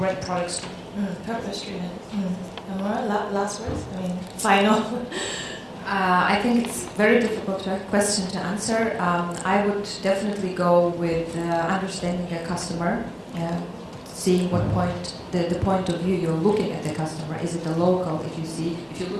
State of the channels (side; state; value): both; identical; correlation 1.00